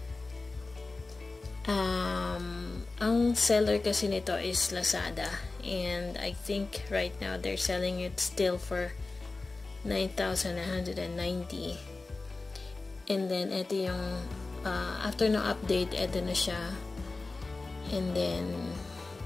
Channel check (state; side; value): quieter; right; 3.5 dB